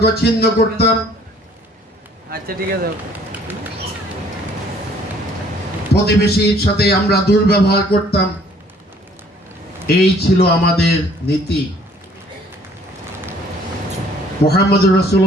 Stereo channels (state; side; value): normal; both; correlation 0.58